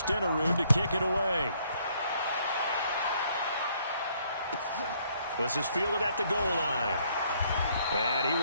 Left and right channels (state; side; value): inverted; both; correlation -0.67